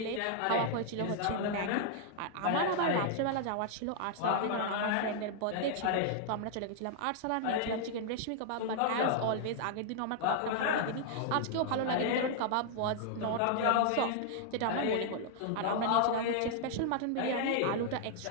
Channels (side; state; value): both; different; correlation -0.01